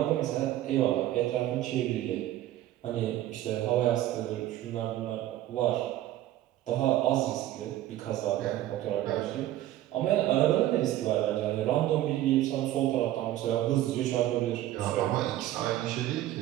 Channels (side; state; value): left; quieter; 13.9 dB